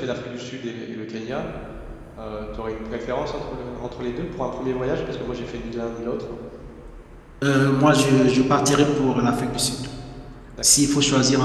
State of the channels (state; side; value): identical; both; correlation 1.00